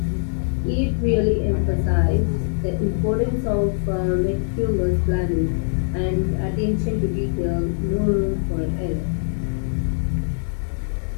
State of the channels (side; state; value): right; silent; 55 dB below the other